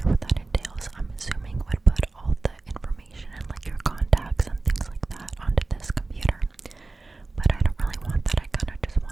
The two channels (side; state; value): left; quieter; 3.4 dB